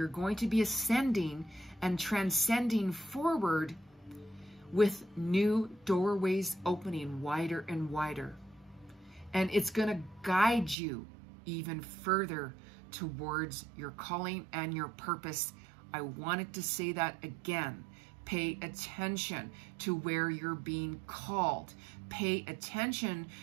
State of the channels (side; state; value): left; drops out; at 10.8 s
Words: going to be ascending and transcending forward with new doorways opening wider and wider. And it's going to guide you even further towards your calling and your purpose. I wanted to say that again. Pay attention to where you're being called. Pay attention